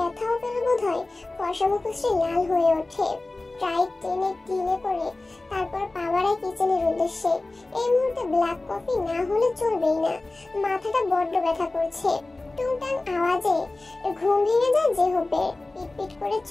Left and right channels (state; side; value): quieter; right; 3.0 dB